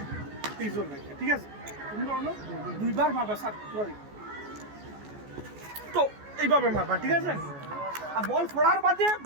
পেস লাগে, ঠিক আছে। তুমি ধরো দুইবার মারবা সাত, তো এইভাবে মারবা, ঠিক আছে। আর বল ফোড়ার বাদে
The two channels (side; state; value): left; late; 14 ms